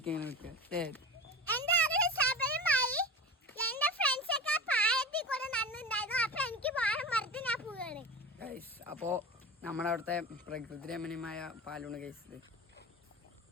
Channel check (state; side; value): normal; both; correlation 0.29